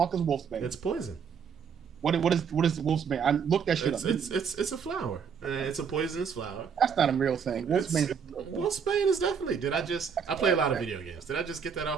is wolfsbane? It's poison. What is wolfsbane? I looked that shit up. It's a flower. It's a poisonous flower. That's not a real thing. Wolfsbane is definitely. I play a lot of video games. Did I just get that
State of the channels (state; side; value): quieter; left; 6.8 dB